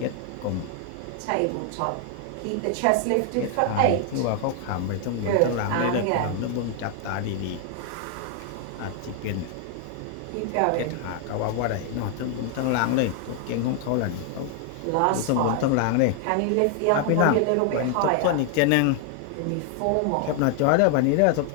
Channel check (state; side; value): different; both; correlation 0.00